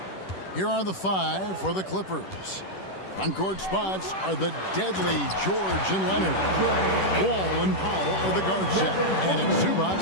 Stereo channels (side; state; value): right; late; 10 ms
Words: Here are the 5 for the Clippers. On-court spots are the deadly George and Leonard. Wall and Powell are the guard set. And it's